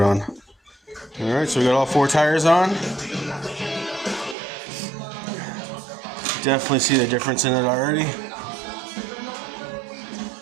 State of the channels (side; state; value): left; drops out; at 4.4 s